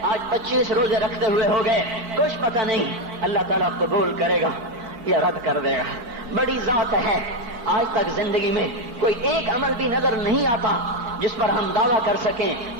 آج 25 روزے رکھتے ہوئے ہو گئے، کچھ پتہ نہیں اللہ تعالیٰ قبول کرے گا یا رد کر دے گا، بڑی ذات ہے۔ آج تک زندگی میں کوئی ایک عمل بھی نظر نہیں آتا جس پر ہم دعویٰ کر سکیں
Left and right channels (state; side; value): late; left; 4.8 ms